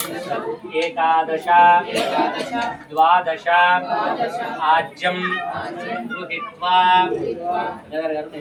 एकादश द्वादश आज्यं गृहीत्वा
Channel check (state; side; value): identical; both; correlation 1.00